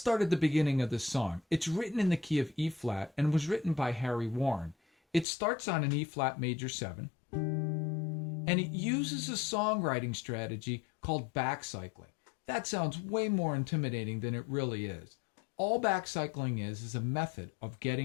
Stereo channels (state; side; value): drops out; right; at 5.2 s